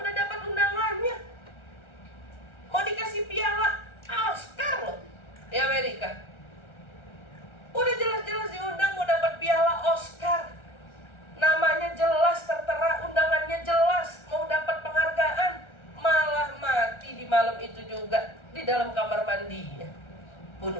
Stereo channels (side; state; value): right; late; 1.4 ms